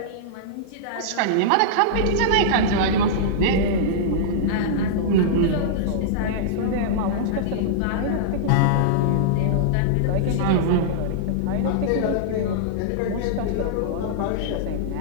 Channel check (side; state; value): both; different; correlation -0.02